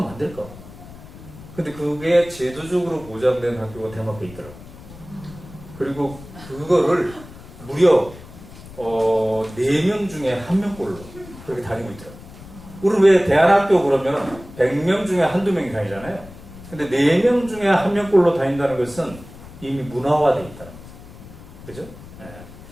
안 될까? 근데 그게 제도적으로 보장된 학교가 덴마크에 있더라고요. 그리고 그거를 무려 4명 중에 1명꼴로 그렇게 다니고 있더라고요. 우리는 왜 대안학교 그러면 100명 중에 한두 명이 다니잖아요. 근데 4명 중에 1명꼴로 다닌다는 것은 이미 문화화되어 있다는 거죠. 그죠?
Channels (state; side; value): noise; left; rumble, 17 dB below the sound